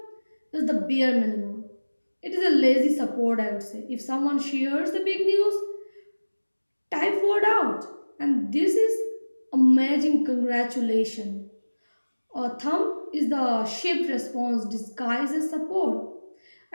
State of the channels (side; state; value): both; inverted; correlation -1.00